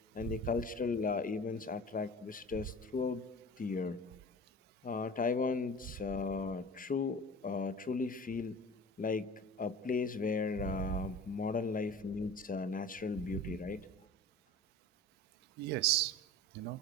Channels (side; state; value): both; normal; correlation 0.38